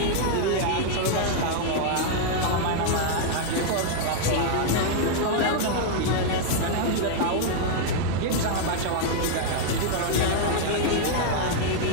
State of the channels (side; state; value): both; different; correlation 0.00